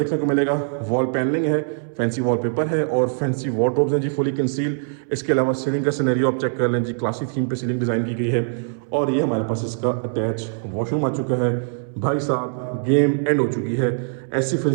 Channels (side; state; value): left; silent; 62 dB below the other